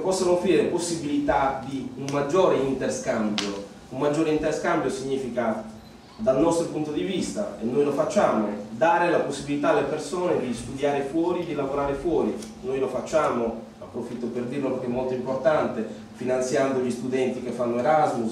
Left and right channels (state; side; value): identical; both; correlation 1.00